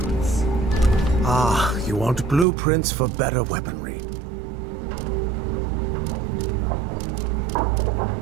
Ah, you want blueprints for better weaponry.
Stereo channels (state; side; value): drops out; left; at 2.5 s